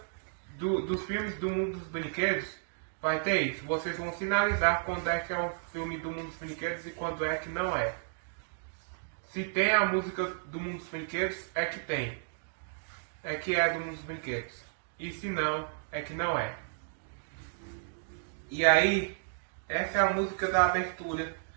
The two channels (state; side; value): silent; left; digital silence